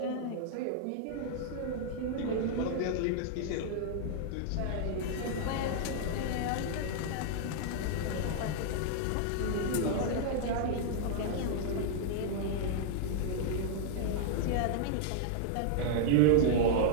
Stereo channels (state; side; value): different; both; correlation -0.01